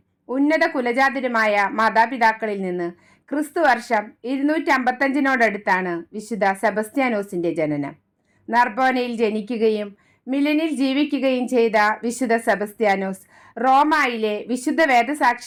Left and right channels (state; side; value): identical; both; correlation 1.00